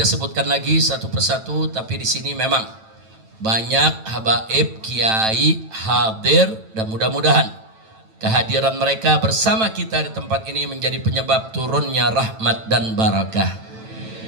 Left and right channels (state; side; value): late; left; 9.1 ms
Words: sebutkan lagi satu persatu, tapi di sini memang banyak habaib, kiai hadir, dan mudah-mudahan kehadiran mereka bersama kita di tempat ini menjadi penyebab turunnya rahmat dan barakah.